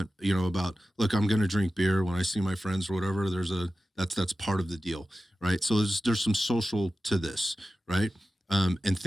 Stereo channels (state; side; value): normal; both; correlation 0.94